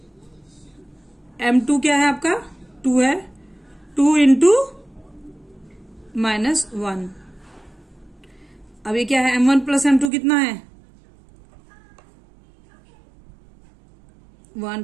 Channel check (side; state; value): left; drops out; at 10.1 s